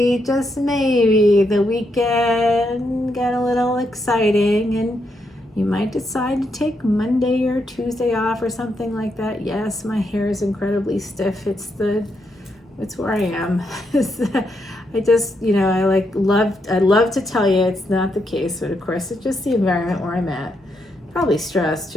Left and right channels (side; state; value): both; normal; correlation 0.80